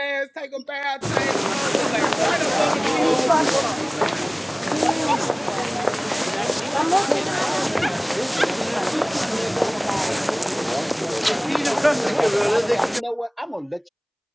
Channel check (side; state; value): both; identical; correlation 1.00